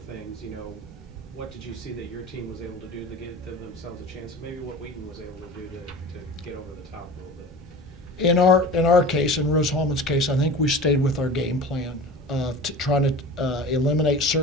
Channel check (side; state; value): both; normal; correlation 0.36